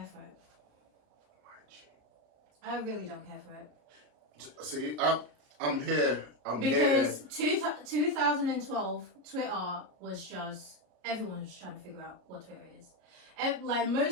for it. I really don't care for it. See, I'm here. Because 2012, Twitter was just, everyone was trying to figure out what Twitter is. And like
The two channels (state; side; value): late; left; 33 ms